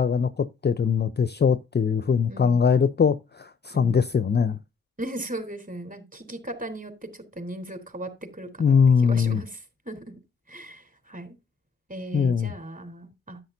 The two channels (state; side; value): quieter; right; 5.7 dB